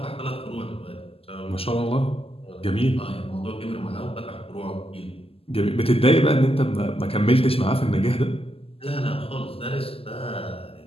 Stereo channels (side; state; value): right; late; 0.28 ms